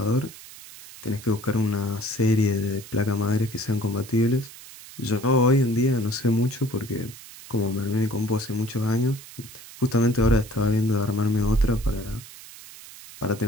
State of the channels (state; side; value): noise; right; hiss, 17 dB below the sound